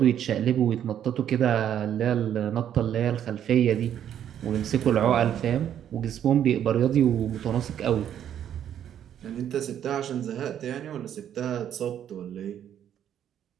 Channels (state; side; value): quieter; left; 9.9 dB